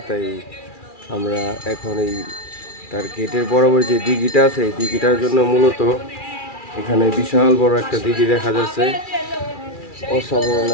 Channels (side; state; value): right; late; 2.4 ms